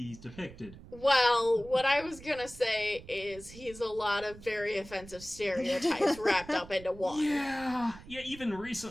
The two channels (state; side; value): noise; right; rumble, 17 dB below the sound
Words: depicted. Well, what I was gonna say is he's a lot of very offensive stereotypes wrapped up into one. Yeah, even